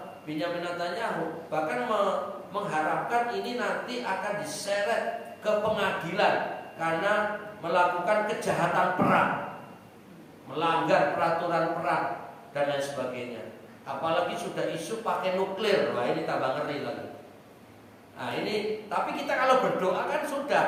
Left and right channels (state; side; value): identical; both; correlation 1.00